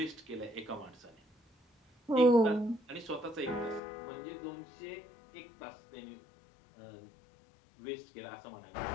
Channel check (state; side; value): drops out; right; at 3.8 s